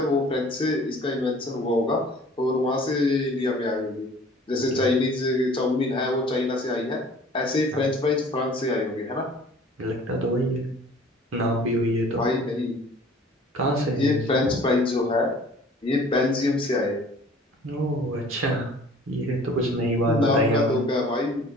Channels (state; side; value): normal; both; correlation 0.50